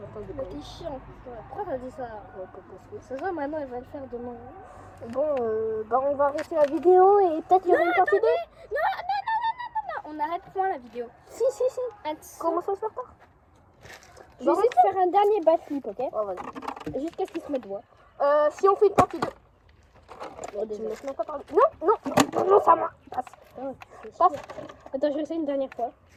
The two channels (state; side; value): identical; both; correlation 1.00